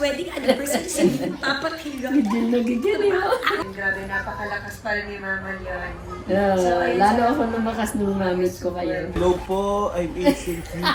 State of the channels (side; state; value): both; identical; correlation 1.00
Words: anniversary sa Papa Kilo. Gigil na gigil yun. Grabe, napakalakas pa rin ni Mama Leon. Lalo ako lumakas nung mamit ko kayo. Hello po, I'm Asian